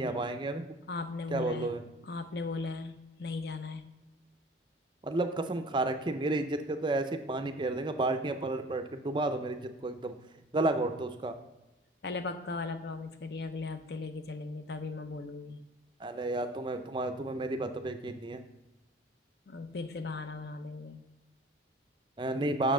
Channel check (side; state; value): both; normal; correlation 0.46